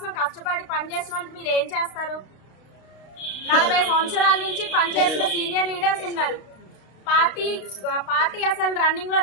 కష్టపడి పనిచేసిన వాళ్ళకి మీరు ఏం చేస్తారు? 40 సంవత్సరాల నుంచి పనిచేసిన సీనియర్ లీడర్స్ ఉన్నారు. పార్టీ అసలు రన్నింగ్ లో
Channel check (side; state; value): right; late; 32 ms